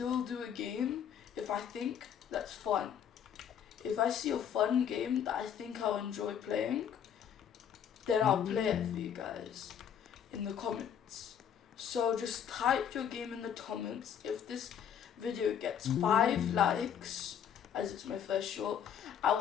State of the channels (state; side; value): quieter; right; 8.5 dB